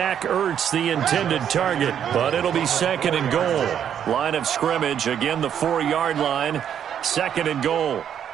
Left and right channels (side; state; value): left; quieter; 9.1 dB